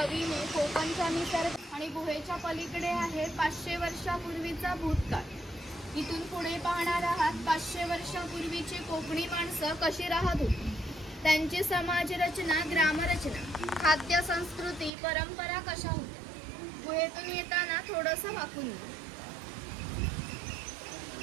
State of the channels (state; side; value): drops out; left; at 14.9 s